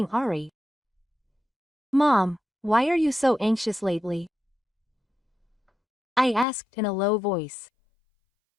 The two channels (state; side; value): drops out; right; at 6.5 s